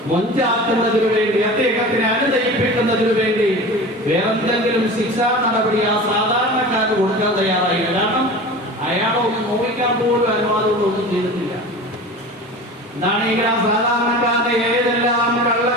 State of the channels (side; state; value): both; normal; correlation 0.35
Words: മൊഞ്ചാക്കുന്നതിനു വേണ്ടി, അദ്ദേഹത്തിനെ അനുനയിപ്പിക്കുന്നതിനു വേണ്ടി വേറെന്തെങ്കിലും ശിക്ഷാ നടപടി ആ സാധാരണക്കാരന് കൊടുക്കാൻ തയ്യാറായില്ല. കാരണം അയാളൊന്നും നോവിക്കാൻ പോലും അനുവാദമൊന്നും ചെയ്തിട്ടില്ല. എന്താണെങ്കിൽ ആ സാധാരണക്കാരനെ ഏതെല്ലാം